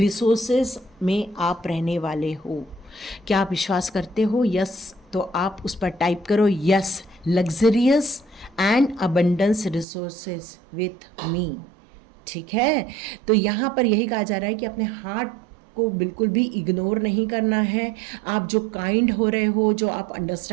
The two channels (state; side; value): drops out; left; at 9.9 s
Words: में आप रहने वाले हो। क्या आप विश्वास करते हो? यस, तो आप उस पर टाइप करो, yes, luxurious and abundance resources with me. ठीक है, तो यहाँ पर यही कहा जा रहा है कि अपने हार्ट को बिल्कुल भी इग्नोर नहीं करना है। आप जो काइंड हो रहे हो, जो आप